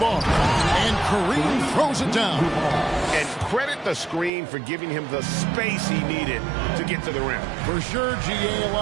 And Kareem throws it down. And credit the screen for giving him the space he needed to get to the rim. For sure, GA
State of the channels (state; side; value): drops out; left; at 4.3 s